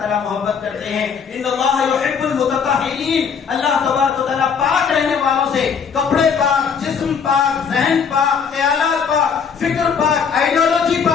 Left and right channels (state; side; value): quieter; right; 6.5 dB